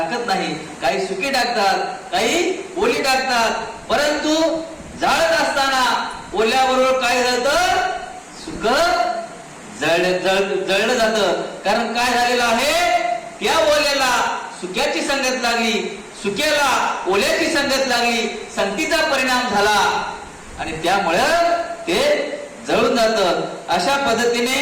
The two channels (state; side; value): identical; both; correlation 1.00